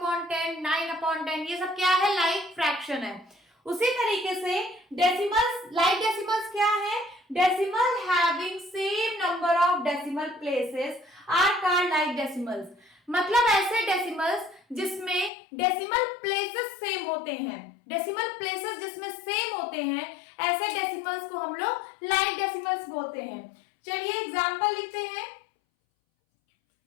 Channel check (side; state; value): right; drops out; at 15.3 s